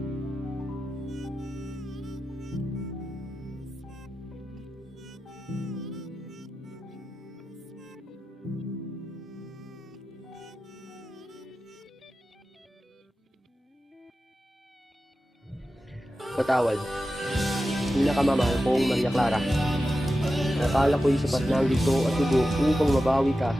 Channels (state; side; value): normal; both; correlation 0.92